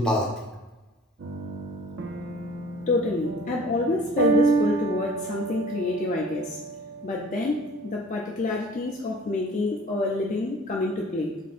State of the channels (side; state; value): both; normal; correlation 0.47